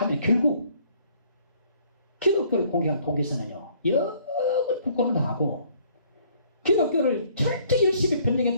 결국 기독교를 공개한 독일에서는요, 영원히 부끄러움을 당하고, 기독교를 철저히 열심히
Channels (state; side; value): inverted; both; correlation -0.61